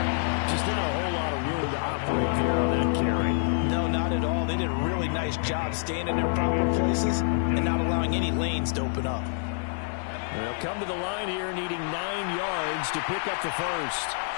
Just not a whole lot of room to operate there on that carry. No, not at all. They did a really nice job staying in their proper places and not allowing any lanes to open up. They'll come to the line here needing 9 yards to pick up the first.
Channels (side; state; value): right; silent; digital silence